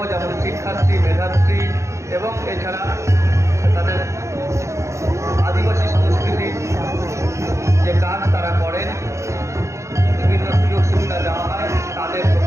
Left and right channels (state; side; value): late; left; 0.14 ms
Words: যেমন শিক্ষাশ্রী, মেধাশ্রী এবং এছাড়া তাদের আদিবাসী সংস্কৃতির যে কাজ তারা করেন, বিভিন্ন সুযোগ সুবিধা দেওয়া হয় তাদের